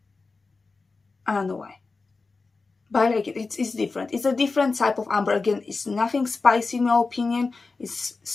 I don't know why, but I like it. It's different. It's a different type of amber. Again, it's nothing spicy in my opinion. It's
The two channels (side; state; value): right; quieter; 4.0 dB